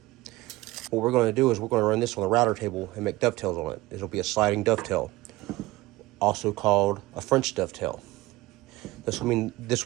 What we're going to do is we're going to run this on the router table and make dovetails on it. It'll be a sliding dovetail, also called a French dovetail. This will mean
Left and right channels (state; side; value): quieter; left; 19.1 dB